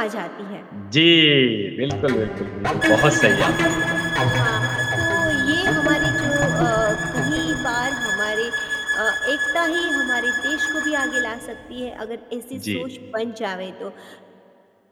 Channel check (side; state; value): both; identical; correlation 1.00